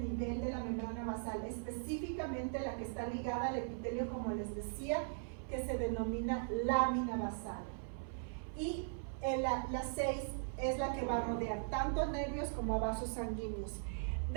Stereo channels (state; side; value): silent; left; 51 dB below the other